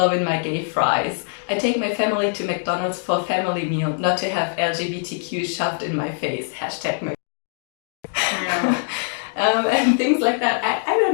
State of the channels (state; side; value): silent; right; digital silence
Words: my gay fries. I take my family to McDonald's for a family meal, not to have LGBTQ shoved in my face. Hashtag my..." Yeah. And things like that. I